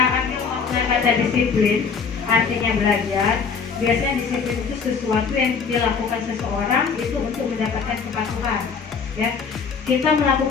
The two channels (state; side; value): quieter; right; 5.6 dB